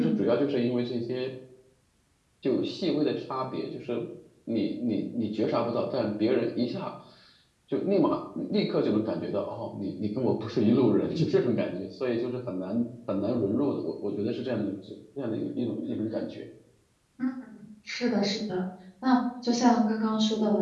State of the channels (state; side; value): identical; both; correlation 1.00